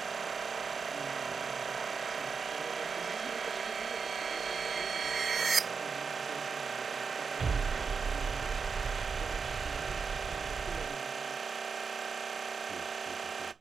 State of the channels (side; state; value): left; quieter; 5.4 dB